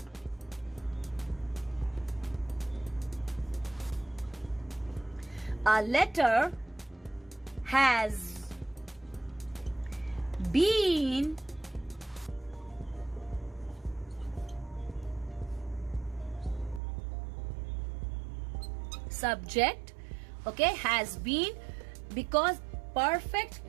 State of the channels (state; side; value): drops out; left; at 16.8 s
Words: has been subject, okay, has been, because perfect